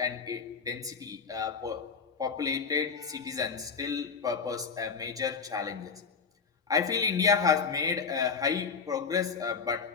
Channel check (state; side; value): quieter; right; 5.6 dB